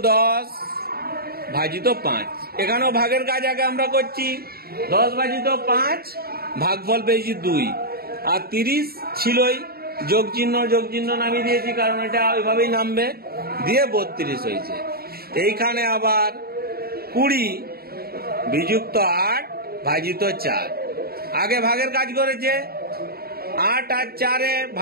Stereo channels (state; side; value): late; left; 0.45 ms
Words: 10 ভাজিত 5, এখানেও ভাগের কাজ আগে আমরা করছি। 10 ভাজিত 5, ভাগফল পেয়েছি 2, আর 30 ছিলই, যোগ চিহ্ন নামিয়ে দিয়েছি, কারণ এটা ওইভাবেই নামবে, দিয়ে 32 হয়েছে। এইখানে আবার 20 বিযুক্ত 8 ভাজিত 4, আগে ভাগের কাজ করেছে। 8 আর 4